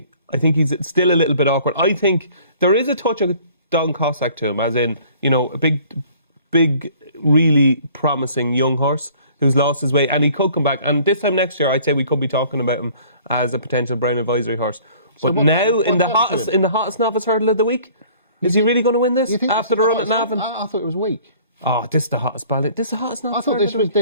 I think he's still a little bit awkward. I think there is a touch of Don Cossack to him, as in, a big, really promising young horse who's lost his way, and he could come back. And this time next year, I'd say we could be talking about him as a potential Brown Advisory horse. But now, in the hottest novice hurdle of the week, is he really going to win this after the run at Navan? I thought it was weak. Oh, this is the hottest ballot. This is the hottest novice hurdle. I thought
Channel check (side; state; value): both; inverted; correlation -0.53